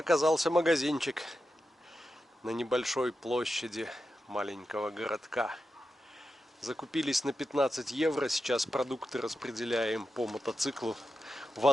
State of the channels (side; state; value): both; normal; correlation 0.89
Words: магазинчик на небольшой площади маленького городка. Закупились на 15 евро. Сейчас продукты распределяем по мотоциклу.